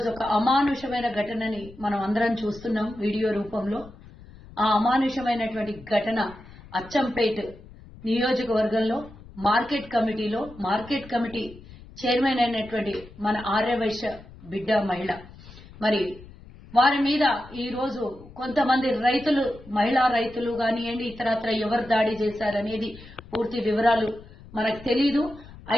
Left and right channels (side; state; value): left; noise; rumble, 19 dB below the sound